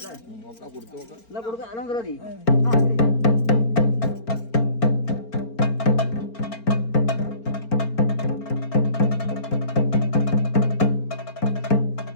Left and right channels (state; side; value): late; right; 4.4 ms